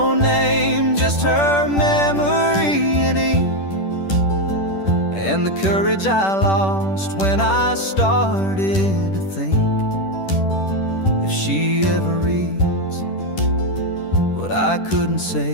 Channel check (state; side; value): late; right; 10 ms